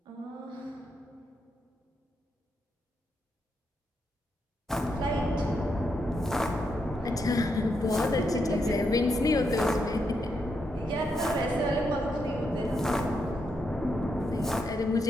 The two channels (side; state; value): both; normal; correlation 0.81